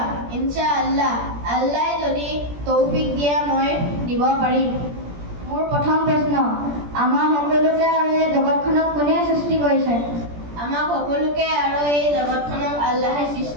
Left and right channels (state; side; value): late; left; 17 ms